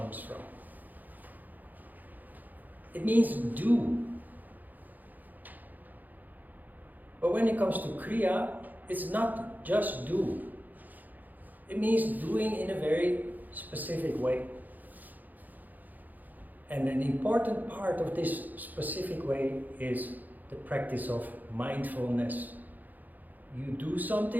from. It means do. But when it comes to Kriya, it's not just do. It means doing in a very specific way. And an important part of this specific way is the practice of mindfulness. You do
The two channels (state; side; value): late; left; 0.083 ms